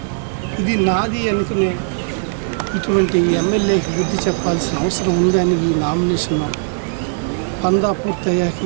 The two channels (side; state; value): left; silent; digital silence